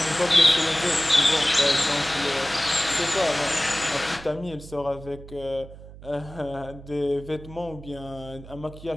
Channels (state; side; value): noise; right; hum, 17 dB below the sound